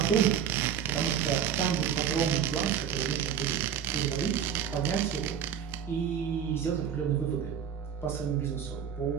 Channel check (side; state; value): left; quieter; 8.4 dB